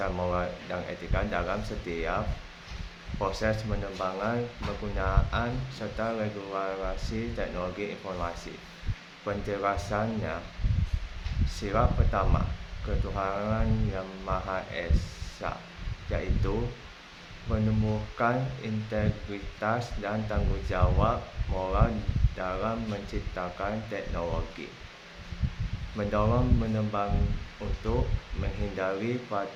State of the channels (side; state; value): both; identical; correlation 1.00